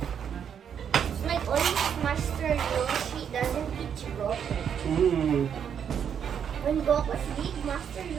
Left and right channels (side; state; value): left; quieter; 8.1 dB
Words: like only Master Yoshi doesn't teach Goku. When Goku's big, Master